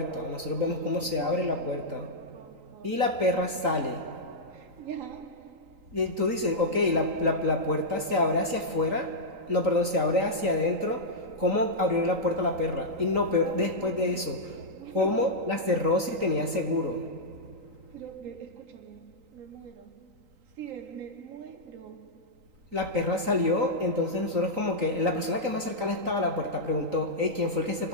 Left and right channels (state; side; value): late; left; 3.9 ms